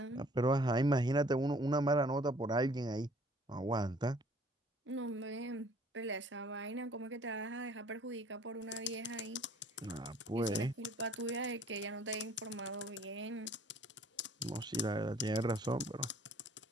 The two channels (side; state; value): both; normal; correlation 0.56